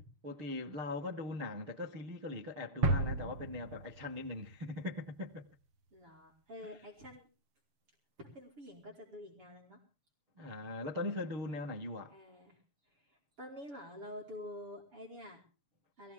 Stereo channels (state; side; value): late; left; 7.0 ms